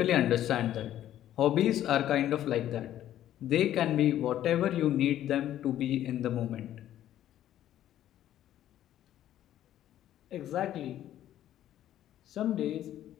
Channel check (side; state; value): right; quieter; 12.1 dB